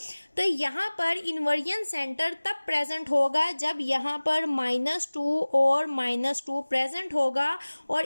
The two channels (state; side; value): inverted; both; correlation -1.00